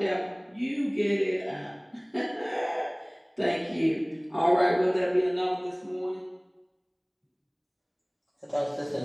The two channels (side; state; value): both; identical; correlation 1.00